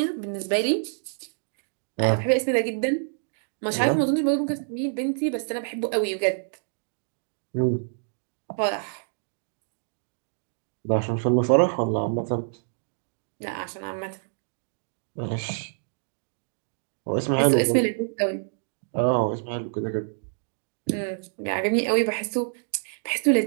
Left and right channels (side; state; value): left; silent; digital silence